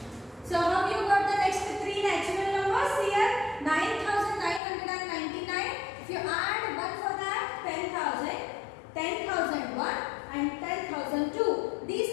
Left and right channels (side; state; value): right; drops out; at 4.6 s